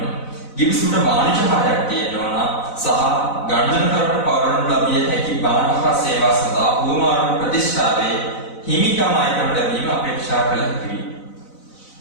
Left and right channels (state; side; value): late; right; 4.0 ms